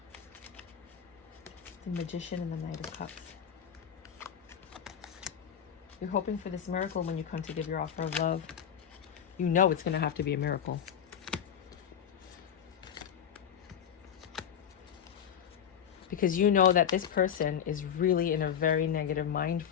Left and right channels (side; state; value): right; quieter; 8.6 dB